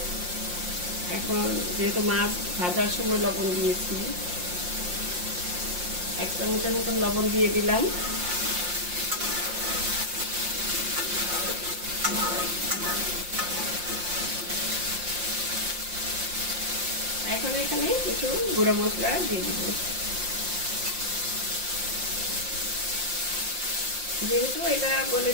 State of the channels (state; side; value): late; left; 5.7 ms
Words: এখন যেহেতু মাছ ভাজার সময় লবণ দিয়েছি, 1 চামচের মতন লবণ দিয়ে দিলাম। এখন এখানে কিছু গুঁড়ো মশলা দিয়ে দিব। যেহেতু এটা